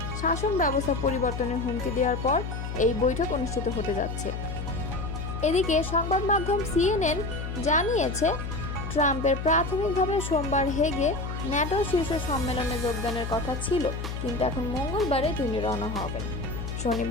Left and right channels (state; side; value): noise; left; hum, 5 dB below the sound